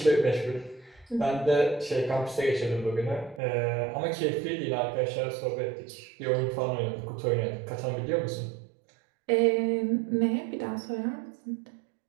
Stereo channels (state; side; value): drops out; left; at 3.4 s